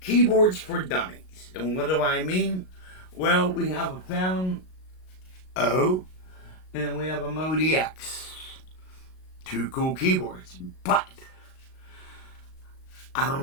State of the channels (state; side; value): late; right; 38 ms